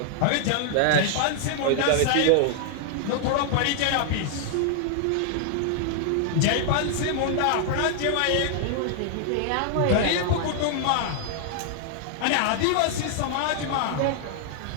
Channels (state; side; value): different; both; correlation -0.01